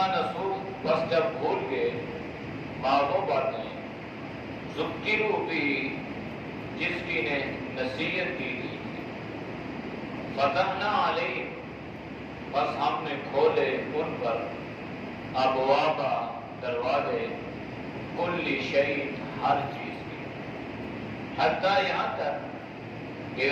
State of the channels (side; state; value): both; identical; correlation 1.00